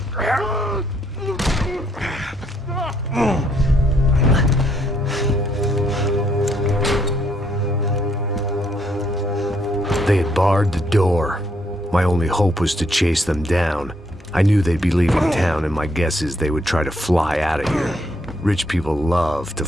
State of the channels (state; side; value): normal; both; correlation 0.72